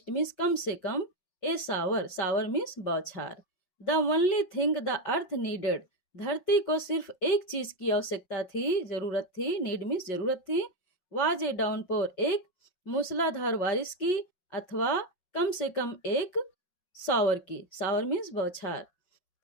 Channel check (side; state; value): right; late; 5.4 ms